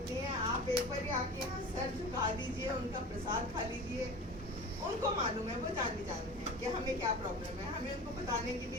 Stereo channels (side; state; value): both; normal; correlation 0.35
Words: नहीं है। आप एक बार आके यहाँ सर झुका दीजिए, उनका प्रसाद खा लीजिए। उनको मालूम है, वो जान है कि हमें क्या प्रॉब्लम है। हमें उनको बताने की